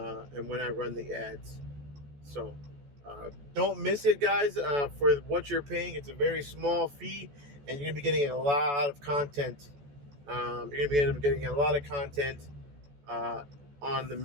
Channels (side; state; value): left; late; 14 ms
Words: when I run the ads. So don't miss it, guys. For what you're paying, it's a very small fee, and you're gonna be getting a lot of content. You're gonna be getting a lot of content on the